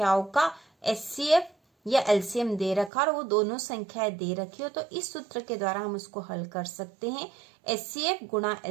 का HCF या LCM दे रखा और वो दोनों संख्याएं दे रखी हो तो इस सूत्र के द्वारा हम उसको हल कर सकते हैं। HCF गुणा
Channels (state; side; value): drops out; left; at 2.9 s